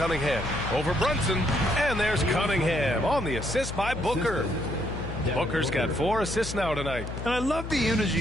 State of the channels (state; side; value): noise; left; hum, 8 dB below the sound